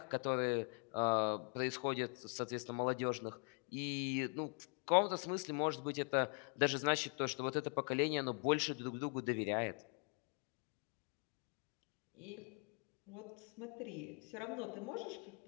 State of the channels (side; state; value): right; quieter; 39.6 dB